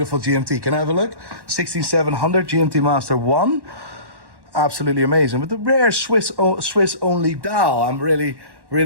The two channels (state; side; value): late; left; 1.1 ms